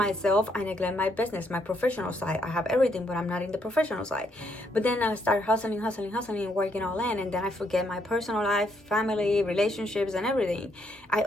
I neglect my business, my professional side. I have everything, but I'm not in the professional side. But then I start hustling, working all in, and then I forget my personal life, family, relationships, and everything. I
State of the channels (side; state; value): both; normal; correlation 0.74